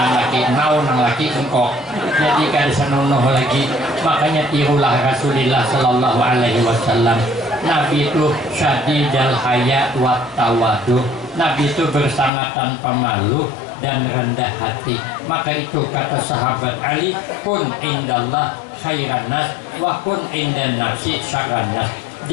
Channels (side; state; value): right; drops out; at 12.3 s